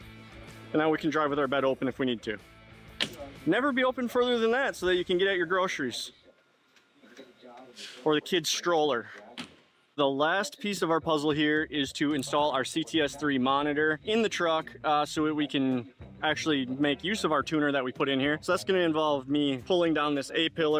And now we can drive with our bed open if we need to. Never be open further than that so that you can get at your groceries. Or the kid's stroller. The last piece of our puzzle here is to install our CTS3 monitor in the truck so that we can actually make use of our tuner that we put in here. So that's going to involve me pulling down this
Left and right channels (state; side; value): identical; both; correlation 1.00